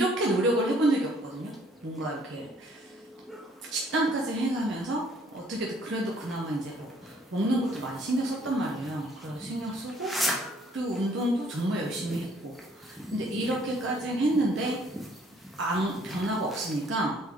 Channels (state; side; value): normal; both; correlation 0.61